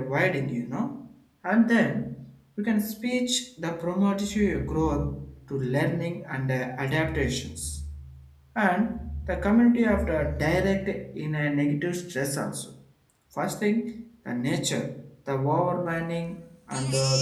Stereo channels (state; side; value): identical; both; correlation 1.00